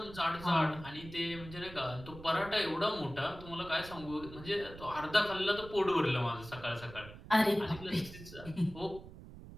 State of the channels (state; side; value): noise; right; rumble, 15 dB below the sound